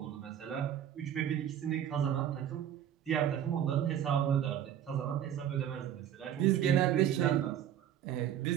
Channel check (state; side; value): quieter; left; 10.3 dB